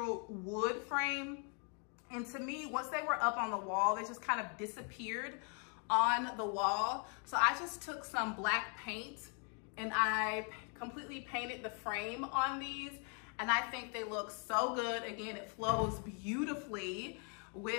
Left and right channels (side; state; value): right; quieter; 39.6 dB